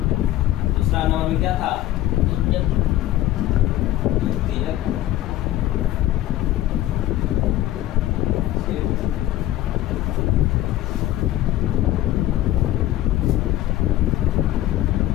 दूसरा नंबर में क्या था? द्वितीय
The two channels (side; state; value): right; quieter; 14.5 dB